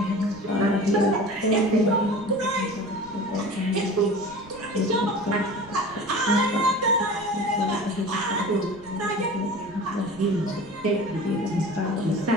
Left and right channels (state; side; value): noise; right; rumble, 22 dB below the sound